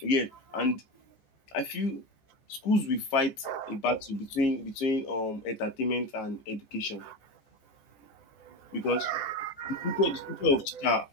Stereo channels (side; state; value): right; late; 15 ms